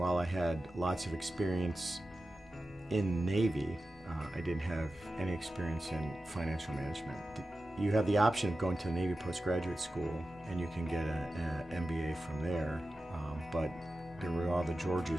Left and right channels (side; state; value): both; normal; correlation 0.94